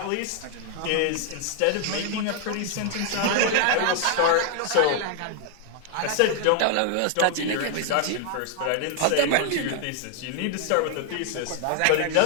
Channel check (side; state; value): both; different; correlation 0.00